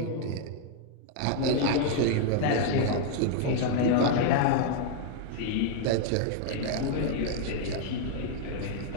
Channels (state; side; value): different; both; correlation 0.00